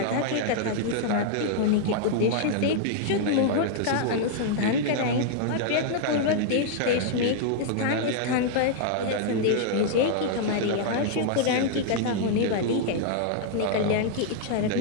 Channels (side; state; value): both; different; correlation -0.01